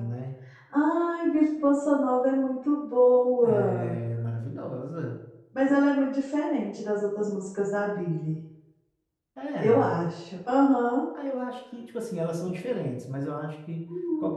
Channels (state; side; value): identical; both; correlation 1.00